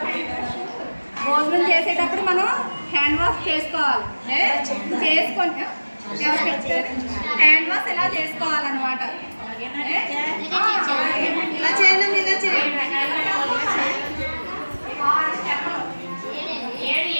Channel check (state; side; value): inverted; both; correlation -1.00